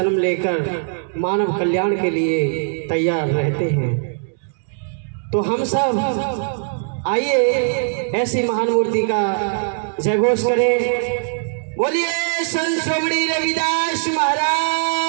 लेकर मानव कल्याण के लिए तैयार रहते हैं। तो हम सब आइए ऐसी महान मूर्ति का जयघोष करें। बोलिए संत श्रोमणी रविदास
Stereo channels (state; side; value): silent; left; 66 dB below the other